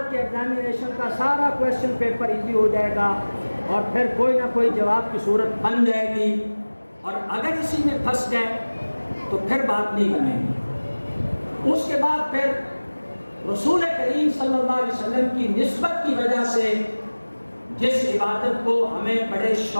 کے ایگزامینیشن کا سارا کویشچن پیپر ایزی ہو جائے گا، اور پھر کوئی نہ کوئی جواب کی صورت بن جائے گی۔ اور اگر اسی میں پھنس گئے تو پھر بات نہیں بنے گی۔ اس کے بعد پھر رسول کریم صلی اللہ علیہ وسلم کی نسبت کی وجہ سے جس عبادت کو ہمیں بڑے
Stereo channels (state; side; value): inverted; both; correlation -1.00